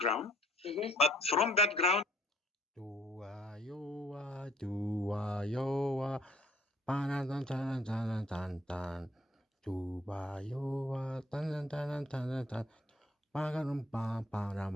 Mm-hmm. But from that ground,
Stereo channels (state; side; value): normal; both; correlation 0.61